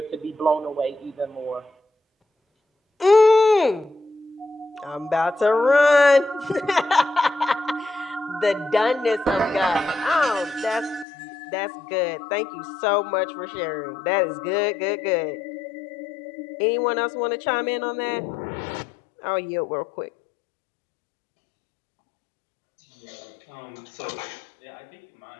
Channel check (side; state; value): right; drops out; at 11.1 s